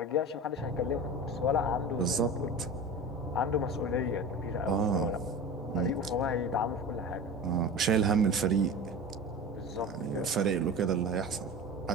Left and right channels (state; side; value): normal; both; correlation 0.32